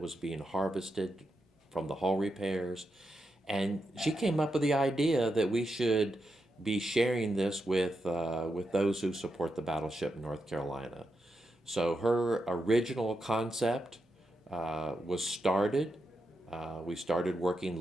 was being harvested from the hull repairs, and she came up with the idea that we should be sharing this with those who support the Battleship North Carolina. So her original concept was started. We started working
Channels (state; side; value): normal; both; correlation 0.85